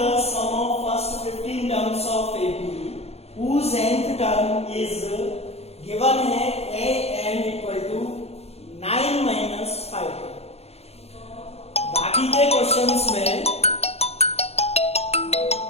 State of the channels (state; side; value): late; right; 0.30 ms